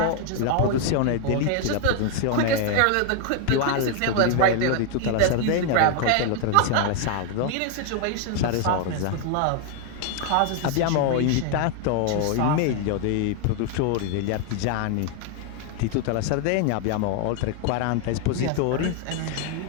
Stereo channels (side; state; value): both; different; correlation 0.00